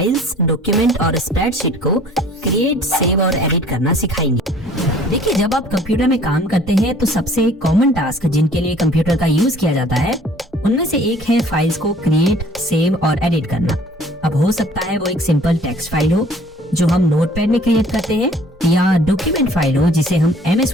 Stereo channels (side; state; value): both; normal; correlation 0.53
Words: डॉक्यूमेंट और स्प्रेडशीट को क्रिएट, सेव और एडिट करना सिखाएंगे। देखिए, जब आप कंप्यूटर में काम करते हैं तो सबसे कॉमन टास्क जिनके लिए कंप्यूटर का यूज किया जाता है उनमें से एक है फाइल्स को क्रिएट, सेव और एडिट करना। अब हो सकता है वो एक सिंपल टेक्स्ट फाइल हो जो हम नोटपैड में क्रिएट करते हैं, या डॉक्यूमेंट फाइल हो जिसे हम